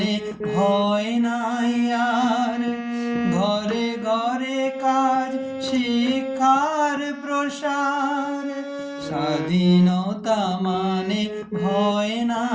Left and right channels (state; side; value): identical; both; correlation 1.00